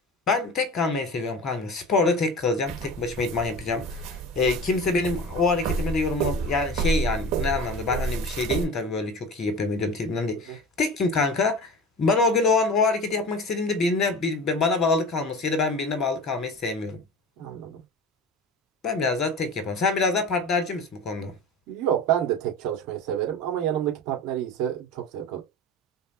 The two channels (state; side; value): normal; both; correlation 0.34